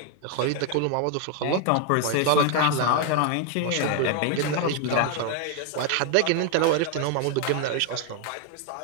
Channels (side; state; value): both; different; correlation 0.01